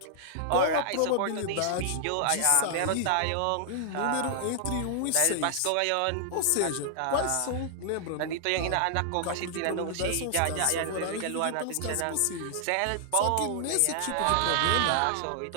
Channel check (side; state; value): both; different; correlation -0.01